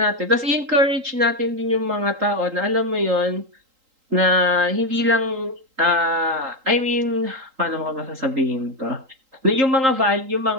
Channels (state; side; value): late; left; 3.8 ms